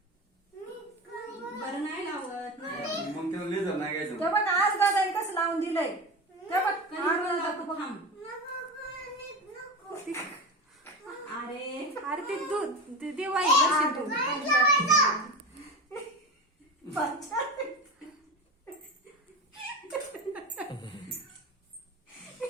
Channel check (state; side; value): normal; both; correlation 0.26